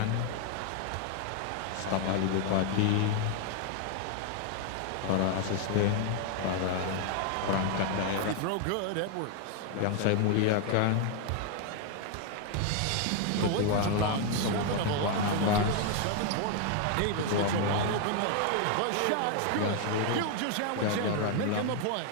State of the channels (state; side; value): different; both; correlation 0.01